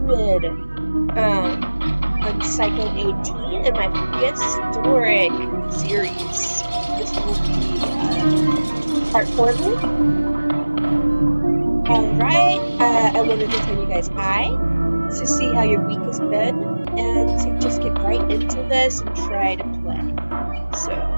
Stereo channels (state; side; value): inverted; both; correlation -1.00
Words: on Cycle 18 in my prehistoric series. This will be part 4, I believe. Alright, I wanted to tell you guys hi, to see how your week has been, and to just get right into this and try to play. So,